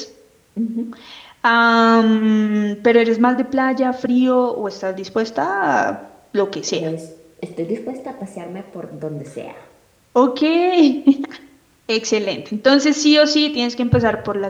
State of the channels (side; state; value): both; identical; correlation 1.00